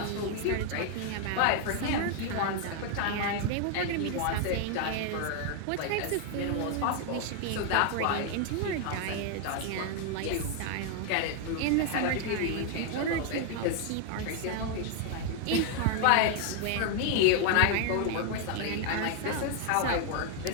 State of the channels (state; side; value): different; both; correlation 0.00